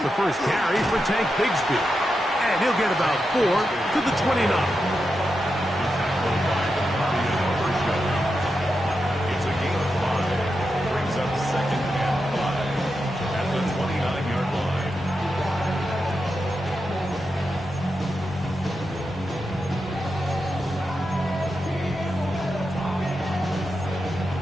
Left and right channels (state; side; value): normal; both; correlation 0.88